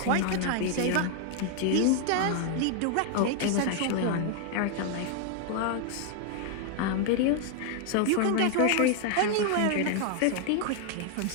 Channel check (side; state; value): both; different; correlation 0.00